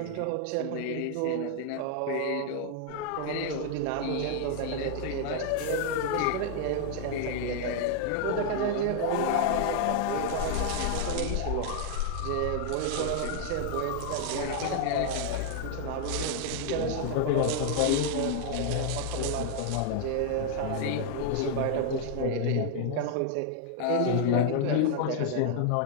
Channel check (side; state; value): both; different; correlation 0.00